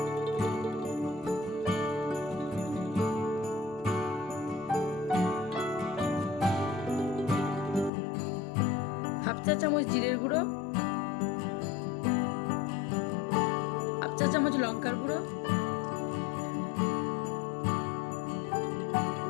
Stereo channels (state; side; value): drops out; right; at 7.9 s